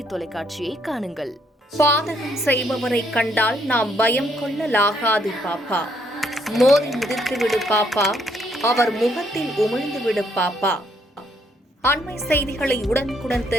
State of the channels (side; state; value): both; normal; correlation 0.71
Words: தொலைக்காட்சியை காணுங்கள். பாதகம் செய்பவரை கண்டால் நாம் பயம் கொள்ளலாகாது பாப்பா. மோதி மிதித்து விடு பாப்பா, அவர் முகத்தில் உமிழ்ந்து விடு பாப்பா. அண்மை செய்திகளை உடனுக்குடன்